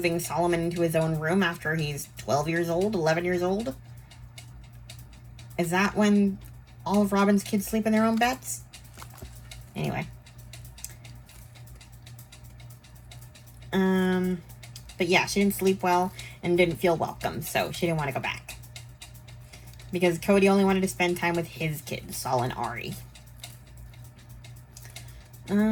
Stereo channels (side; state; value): both; identical; correlation 1.00